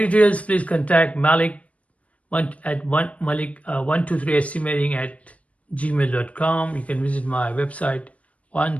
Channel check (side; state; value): right; late; 0.065 ms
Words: please contact Malik at Malik123estimating@gmail.com. You can visit my website